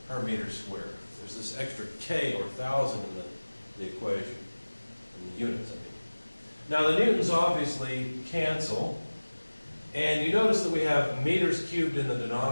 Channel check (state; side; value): inverted; both; correlation -1.00